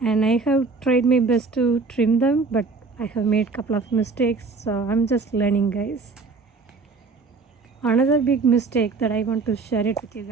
and I have tried my best to trim them, but I have made a couple of mistakes, so I'm just learning, guys. Another big mistake that I want to share it with you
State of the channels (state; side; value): quieter; left; 4.2 dB